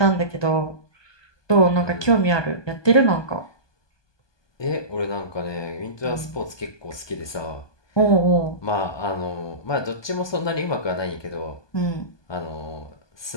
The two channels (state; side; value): late; right; 1.2 ms